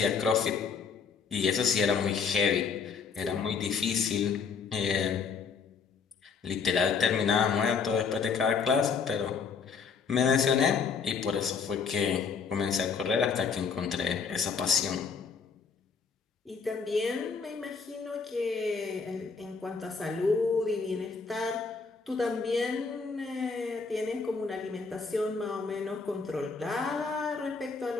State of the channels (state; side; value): quieter; right; 5.5 dB